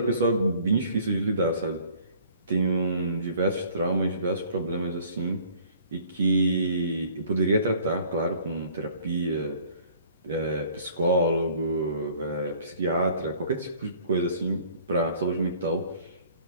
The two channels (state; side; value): inverted; both; correlation -0.54